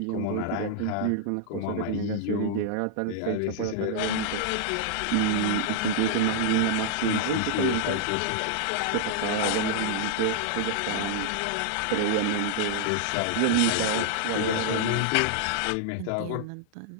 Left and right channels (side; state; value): both; different; correlation -0.01